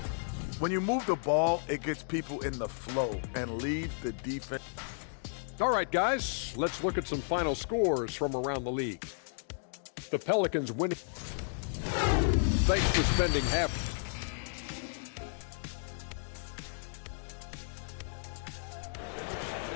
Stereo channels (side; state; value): right; silent; digital silence